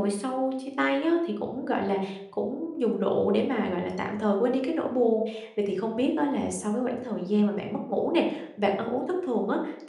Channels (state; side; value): identical; both; correlation 1.00